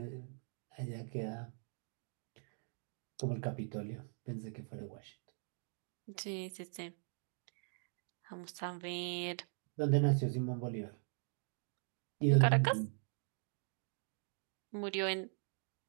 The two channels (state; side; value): silent; left; 50 dB below the other